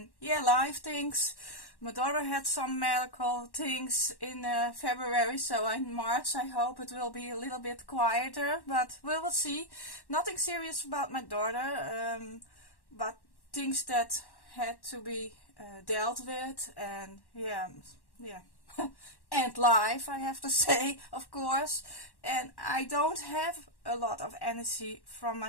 yeah, life things. My daughter had some medical things in February, so in March I hope it will be a little bit quieter, but we will see. Nothing serious about my daughter, but things that had to be dealt with, and yeah. And life, I have to say, of course. And I don't have a lot of energy from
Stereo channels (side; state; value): right; late; 1.1 ms